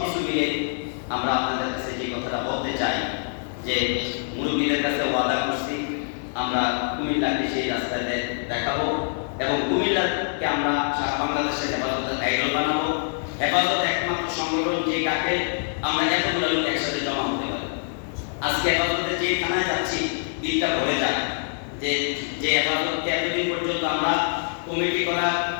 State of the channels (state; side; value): silent; right; digital silence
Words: মিলে আমরা আপনাদের কাছে যে কথাটা বলতে চাই যে মুরব্বীদের কাছে ওয়াদা করছি, আমরা কুমিল্লাকে সেই রাস্তায় দেখাবো এবং কুমিল্লাকে আমরা সারা বাংলাদেশের হেফাজতের আইডল বানাবো। হেফাজত একমাত্র সংগঠন যে কাকে আমরা এতগুলো লোক একসাথে জমা হতে পারি। আজকে হেফাজতে যে থানায় যাচ্ছি দিলটা ভরে যায় যে হেফাজতকে এতদিন পর্যন্ত আমরা কমিটি করা